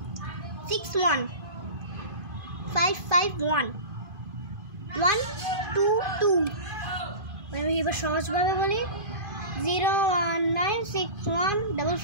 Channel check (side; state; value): left; late; 2.5 ms